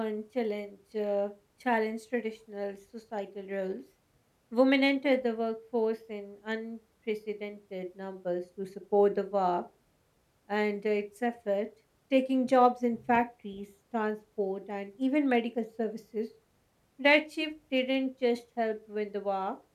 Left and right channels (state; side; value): identical; both; correlation 1.00